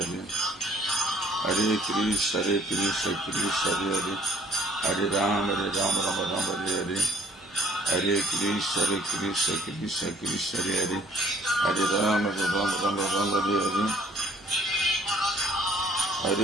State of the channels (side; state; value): both; normal; correlation 0.59